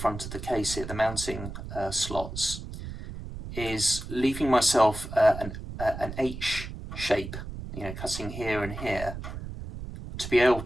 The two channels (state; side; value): noise; right; rumble, 9 dB below the sound